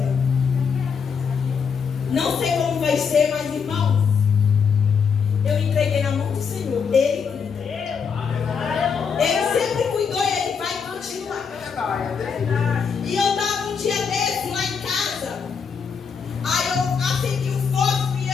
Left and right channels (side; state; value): right; quieter; 6.2 dB